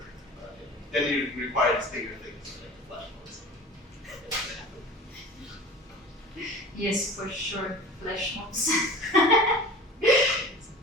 Then you require these bigger things like flash mobs. Yes, for sure, flash mobs.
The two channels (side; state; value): both; normal; correlation 0.39